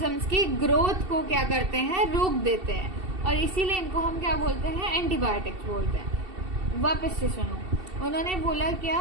की ग्रोथ को क्या करते हैं, रोक देते हैं, और इसीलिए इनको हम क्या बोलते हैं, एंटीबायोटिक्स बोलते हैं। वापस से सुनो, उन्होंने बोला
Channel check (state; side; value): late; left; 2.7 ms